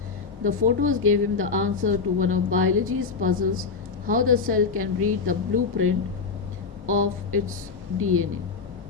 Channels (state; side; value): quieter; right; 5.0 dB